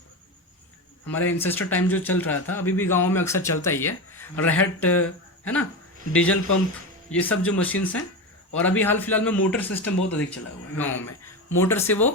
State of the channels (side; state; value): both; normal; correlation 0.19